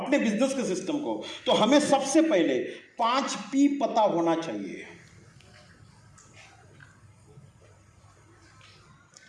बिजनेस के सिस्टम को, तो हमें सबसे पहले 5P पता होना चाहिए,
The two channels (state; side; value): identical; both; correlation 1.00